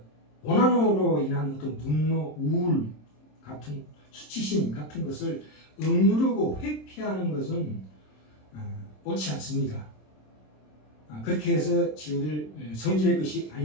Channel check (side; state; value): right; late; 26 ms